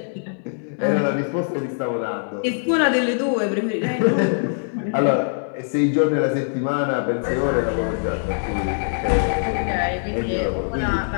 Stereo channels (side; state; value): right; silent; digital silence